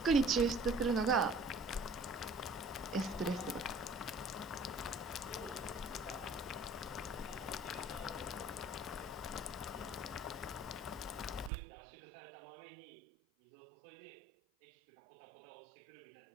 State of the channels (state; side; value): drops out; left; at 11.5 s